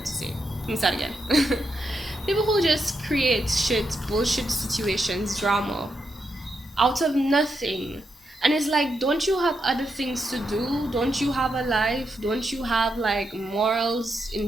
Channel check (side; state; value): both; normal; correlation 0.83